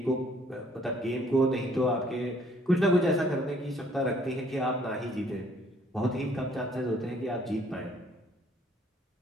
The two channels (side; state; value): both; normal; correlation 0.61